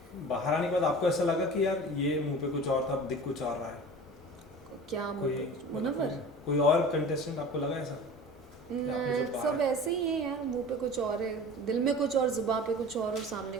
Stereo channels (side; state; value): both; normal; correlation 0.38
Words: बाहर आने के बाद आपको ऐसा लगा कि यार ये मुंह पे कुछ और था अब दिख कुछ और रहा है क्या कोई मुनव्वर कोई और कंटेस्टेंट आपको लगा ऐसा आपने जो सब ऐसे ही है यार मुंह पे कुछ और है दिल में कुछ और जुबान पे कुछ और सामने